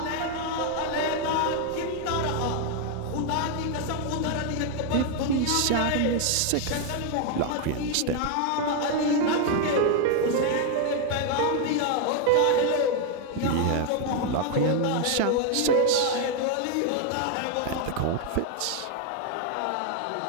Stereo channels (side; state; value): both; different; correlation 0.01